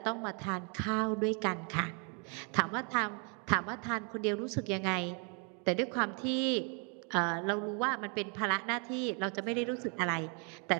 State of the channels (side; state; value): left; quieter; 36.7 dB